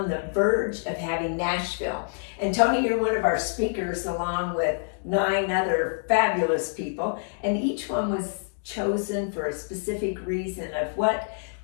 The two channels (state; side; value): silent; right; digital silence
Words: the verge of having Nashville. And Tony, you're one of our speakers along with 9 other fabulous people. And each one was chosen for a specific reason of what